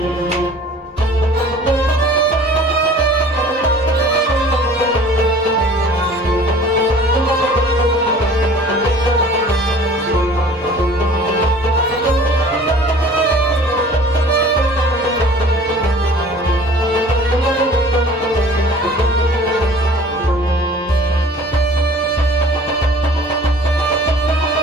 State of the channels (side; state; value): both; normal; correlation 0.48